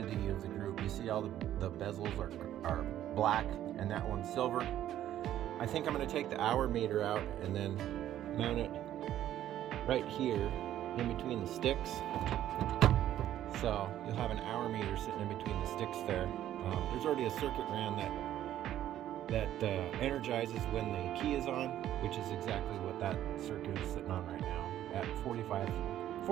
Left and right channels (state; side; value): quieter; left; 12.1 dB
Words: of the group. You see all the bezels are black and that one's silver. I think I'm going to take the hour meter out and then mount it right here in between the sticks. So you'll have an hour meter sitting in between the sticks there. There's already a circuit ran that energizes when the key is on, which is exactly what that circuit is sitting on right now at